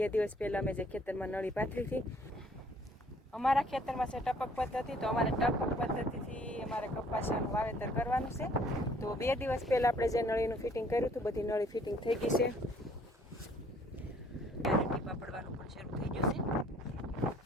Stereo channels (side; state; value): both; normal; correlation 0.59